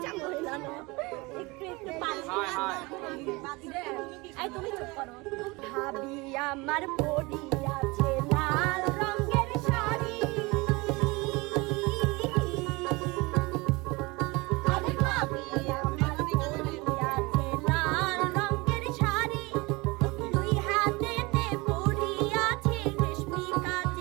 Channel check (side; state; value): left; quieter; 24.6 dB